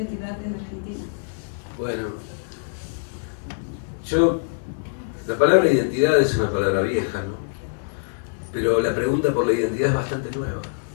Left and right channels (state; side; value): silent; right; digital silence